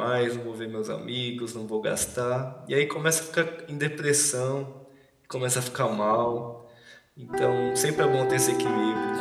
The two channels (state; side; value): identical; both; correlation 1.00